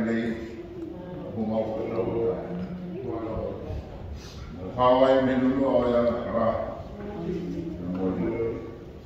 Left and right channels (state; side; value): identical; both; correlation 1.00